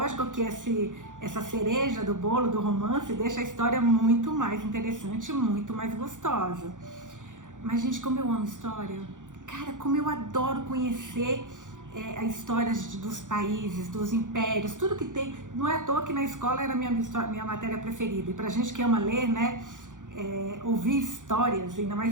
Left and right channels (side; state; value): left; late; 0.87 ms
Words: que essa cereja do bolo do romance deixa a história muito mais interessante, muito mais gostosa. Mas, gente, como eu amo história. Cara, como eu adoro conhecer as histórias dos países, dos impérios, tudo que tem. Não é à toa que na escola era minha matéria preferida. E pra gente que ama ler, né, ouvir histórias, ainda